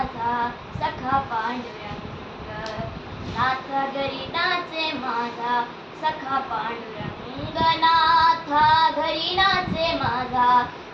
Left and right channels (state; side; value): identical; both; correlation 1.00